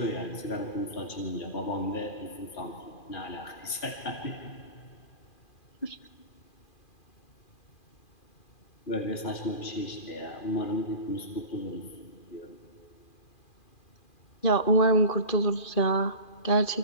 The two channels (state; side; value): late; right; 2.4 ms